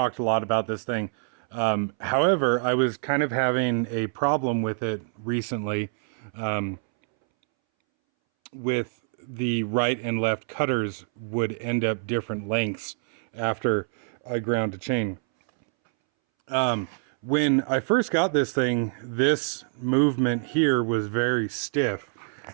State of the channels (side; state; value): left; silent; 61 dB below the other